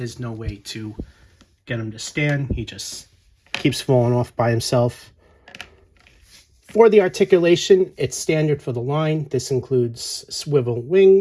no way to get him to stand. He just keeps falling off by himself. For the articulation, it's standard for the line. This includes swivel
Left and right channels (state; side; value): identical; both; correlation 1.00